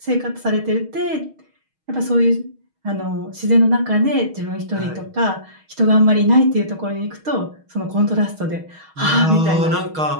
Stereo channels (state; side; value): late; left; 6.4 ms